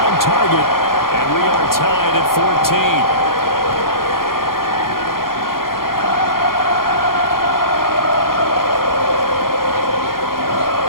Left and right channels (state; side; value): late; right; 0.92 ms